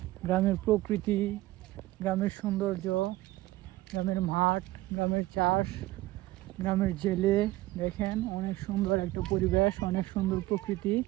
গ্রামের প্রকৃতি, গ্রামের সৌন্দর্য, গ্রামের মাঠ, গ্রামের চাষ, গ্রামের জেলে দেখেন অনেক সুন্দর একটা পরিবেশ, অনেক সুন্দর প্রকৃতি।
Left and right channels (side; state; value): left; quieter; 17.7 dB